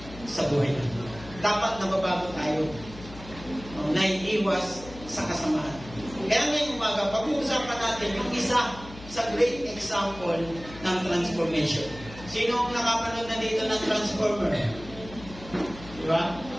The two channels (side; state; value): left; noise; hum, 16 dB below the sound